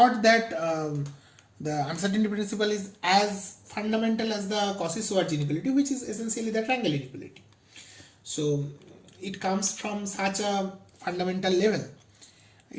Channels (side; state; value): both; identical; correlation 1.00